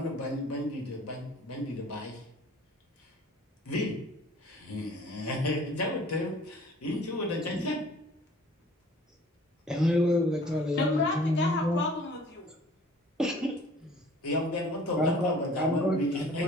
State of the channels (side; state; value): both; normal; correlation 0.50